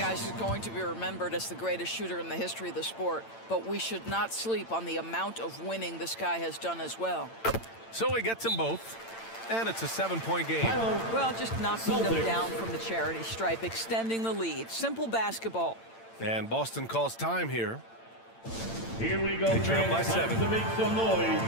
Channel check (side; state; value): right; late; 8.8 ms